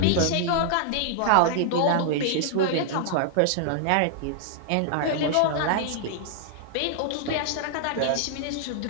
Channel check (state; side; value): different; both; correlation -0.01